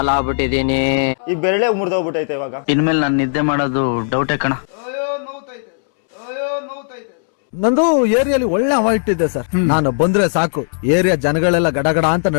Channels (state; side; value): silent; right; 68 dB below the other